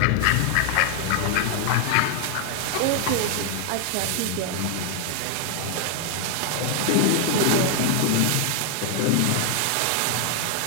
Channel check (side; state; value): both; different; correlation 0.00